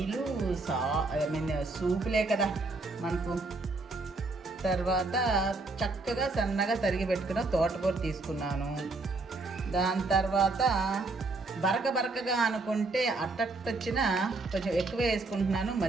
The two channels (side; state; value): left; quieter; 3.4 dB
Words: సూపులే కదా మనకు. తర్వాత చక్కగా సన్నగా తరిగి పెట్టుకున్న తోటకూర తీసుకున్నాను. దాని తర్వాత బరకగా అనుకుంటే అట్టొచ్చిన కొంచెం ఎక్కువ వేసుకుంటున్నాను,